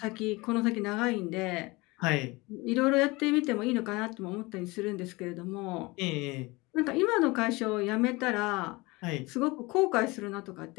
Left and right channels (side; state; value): right; quieter; 23.6 dB